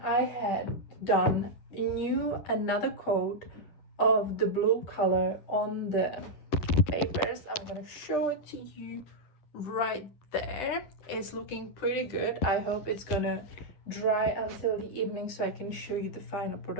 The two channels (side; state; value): right; late; 10 ms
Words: I had done another coat of the blue color on the papers. I'm gonna show it to you right there. It's looking pretty good. I hope it's gonna dry until the evening so I can show you the final